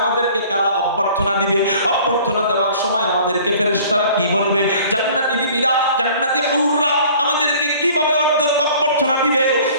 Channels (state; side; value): inverted; both; correlation -0.50